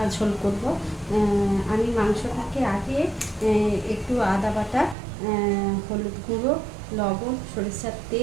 ঝোল করব। আমি মাংসটাকে আগে একটু আদা বাটা, হলুদ গুঁড়ো, লবণ, সরিষার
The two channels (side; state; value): left; drops out; at 5.0 s